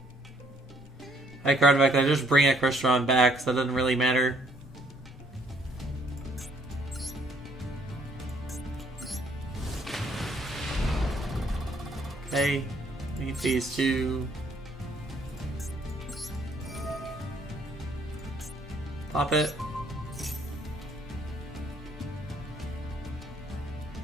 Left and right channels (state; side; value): normal; both; correlation 0.65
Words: I card back, I just bring a Crystron back, so that doesn't really matter. Okay, need these two. Pop it.